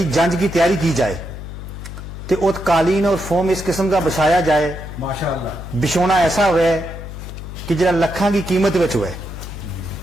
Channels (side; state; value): left; noise; hum, 10 dB below the sound